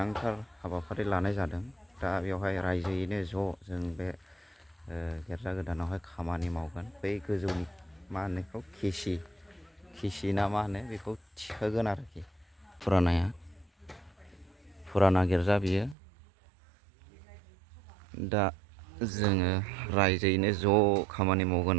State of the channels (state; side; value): drops out; left; at 16.0 s